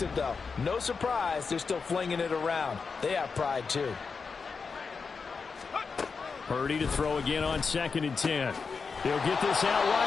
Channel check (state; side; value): quieter; right; 5.1 dB